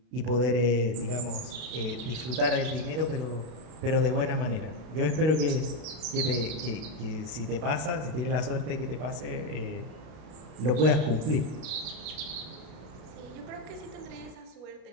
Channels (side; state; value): left; late; 33 ms